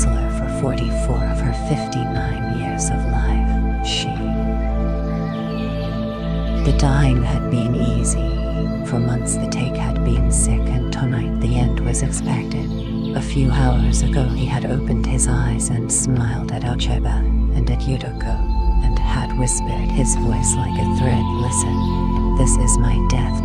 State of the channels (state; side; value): identical; both; correlation 1.00